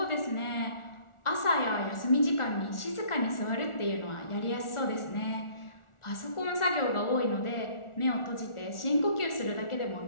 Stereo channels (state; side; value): late; right; 1.4 ms